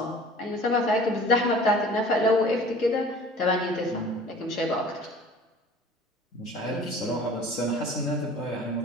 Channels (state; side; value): normal; both; correlation 0.46